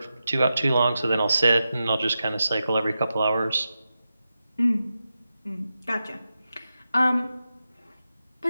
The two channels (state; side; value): inverted; both; correlation -0.90